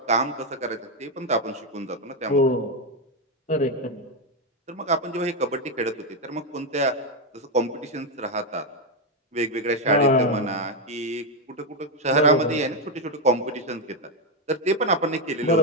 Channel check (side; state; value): both; normal; correlation 0.05